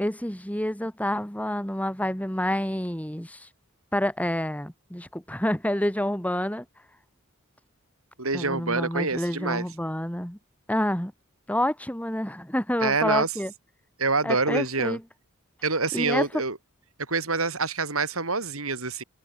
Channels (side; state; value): both; normal; correlation 0.37